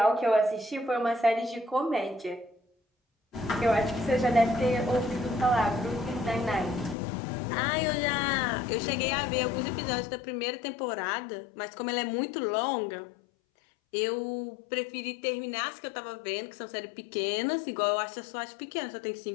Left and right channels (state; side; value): drops out; right; at 7.0 s